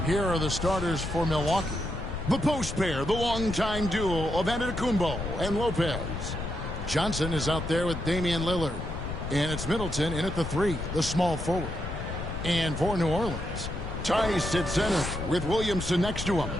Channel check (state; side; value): noise; left; rumble, 6 dB below the sound